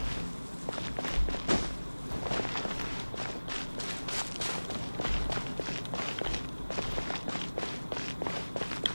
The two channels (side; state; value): both; inverted; correlation -1.00